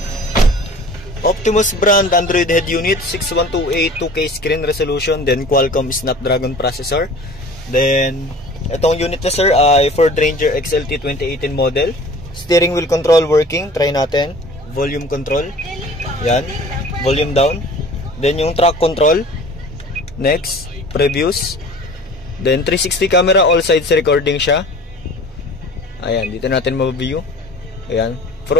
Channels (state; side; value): normal; both; correlation 0.44